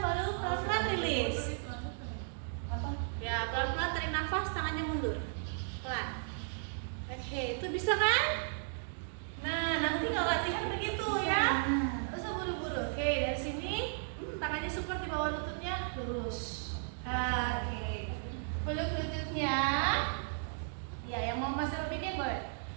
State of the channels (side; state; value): left; silent; digital silence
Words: baru pelan-pelan rilis. Ya, pelan-pelan tarik nafas, tangannya mundur. Pelan. Oke, itu bisa kan? Nah, nanti kalau latihan begitu ya. Terus buru-buru. Oke, dari sini tangannya support di bawah lututnya, lurus. Oke. Peluk lututnya. Ya, yang mau masih bikin boleh.